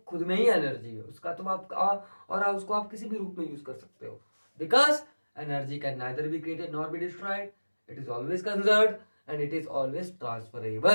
खुद में ही एनर्जी है उसका, तो आप और आप उसको आप किसी भी रूप में यूज कर सकते हो, because energy can neither be created nor be destroyed, it is always conserved and it is always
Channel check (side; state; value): both; inverted; correlation -1.00